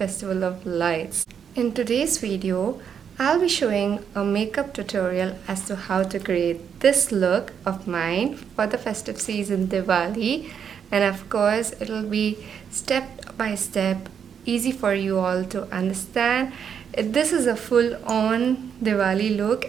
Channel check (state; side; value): quieter; left; 7.6 dB